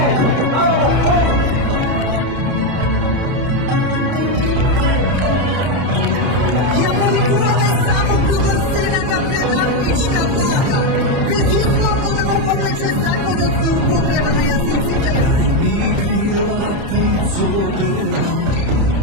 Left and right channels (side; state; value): left; late; 30 ms